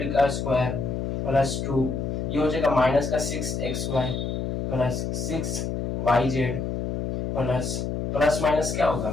का स्क्वायर प्लस 2, ये हो जाएगा माइनस का 6xy plus 6yz plus plus minus क्या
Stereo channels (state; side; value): noise; left; hum, 2 dB below the sound